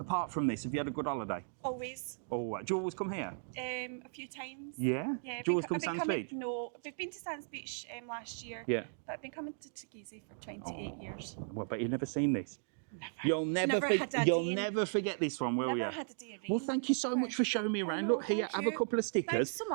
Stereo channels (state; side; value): silent; left; digital silence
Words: from this, have you had a good holiday? Always. Oh, do you always come here? A few times. Yeah. Yeah. Do you always I've come been Sands coming- Beach? No, we've been to Sands Beach last year. Yeah. But I've been coming to Teguise for 28 Oh, years. well, but you've never seen this. You'll never, Never had a you'll day in- never forget this one, will Never you? had a day of Well, rain. thank you so much for showing me around. No, Look here, thank have a you. couple of stickers, Thanks so